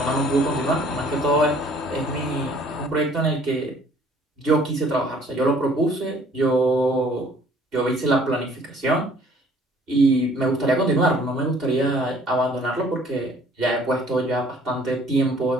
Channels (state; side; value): normal; both; correlation 0.57